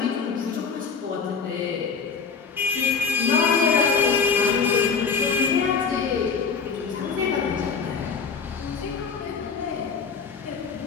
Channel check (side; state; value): right; quieter; 5.5 dB